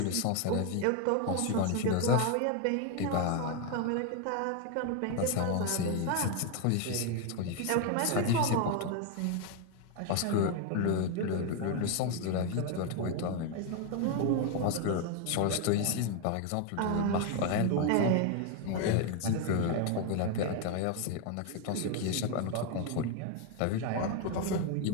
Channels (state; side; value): different; both; correlation 0.01